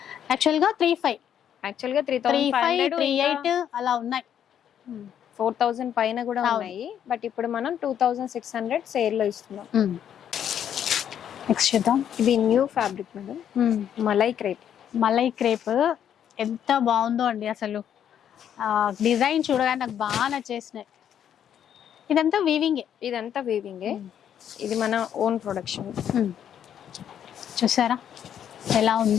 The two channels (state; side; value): quieter; right; 9.4 dB